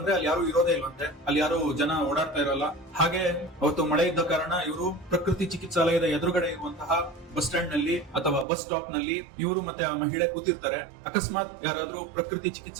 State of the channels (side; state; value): left; drops out; at 8.5 s